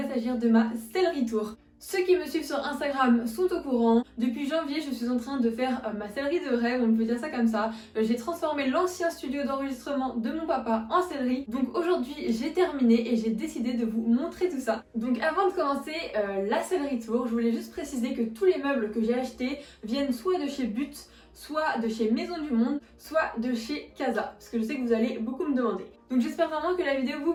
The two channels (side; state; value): both; identical; correlation 1.00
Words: s'agir de ma sellerie tour. Ceux qui me suivent sur Instagram sont au courant. Depuis janvier, je suis en train de faire ma sellerie de rêve, on peut dire ça comme ça. J'ai transformé l'ancien studio d'enregistrement de mon papa en sellerie. Donc aujourd'hui, j'ai terminé et j'ai décidé de vous montrer tout ça. Donc avant de commencer la sellerie tour, je voulais juste préciser que tous les meubles que j'ai achetés viennent soit de chez But, soit de chez Maison du Monde, soit de chez Casa, parce que je sais que vous allez beaucoup me demander. Donc j'espère vraiment que la vidéo vous